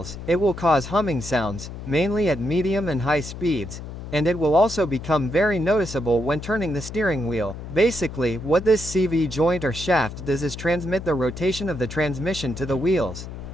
it will cause humming sounds, mainly at medium and high speeds, and it will also become very noticeable when turning the steering wheel. Basically, what this CV joint or shaft does is transmit the rotation of the transmission to the wheels,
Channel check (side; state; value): left; noise; hum, 10 dB below the sound